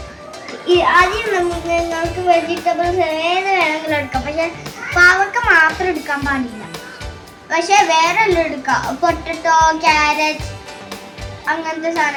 ആദ്യം നിങ്ങൾക്ക് വെജിറ്റബിൾസ് ഏത് വേണമെങ്കിലും എടുക്കാം. പക്ഷേ പാവക്ക മാത്രം എടുക്കാൻ പാടില്ല. പക്ഷേ വേറെ എല്ലാം എടുക്കാം. പൊട്ടറ്റോ, ക്യാരറ്റ്, അങ്ങനത്തെ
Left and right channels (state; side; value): identical; both; correlation 1.00